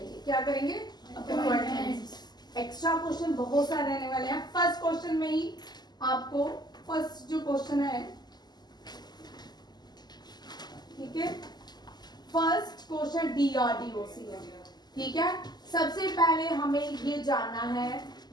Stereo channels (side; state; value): right; late; 0.20 ms